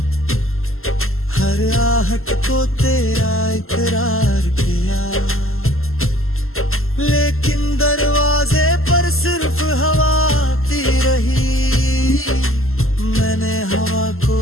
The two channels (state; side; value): late; right; 0.62 ms